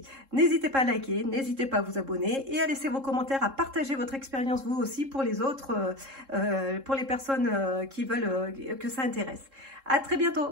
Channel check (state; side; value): late; left; 3.7 ms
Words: N'hésitez pas à liker, n'hésitez pas à vous abonner et à laisser vos commentaires, à partager votre expérience vous aussi pour les autres, pour les personnes qui veulent que ça intéresse. À très